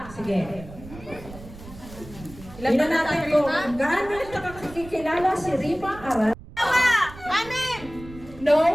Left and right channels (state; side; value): noise; right; rumble, 16 dB below the sound